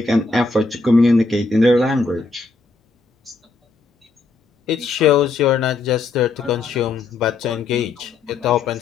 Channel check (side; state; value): right; quieter; 3.8 dB